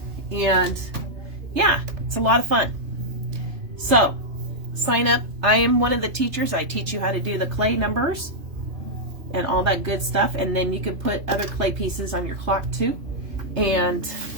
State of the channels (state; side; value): late; left; 3.3 ms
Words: And yeah, it's a lot of fun. So sign up. I am one of the teachers. I teach you how to do the clay numbers and all that good stuff. And then you can put other clay pieces on your clock too. And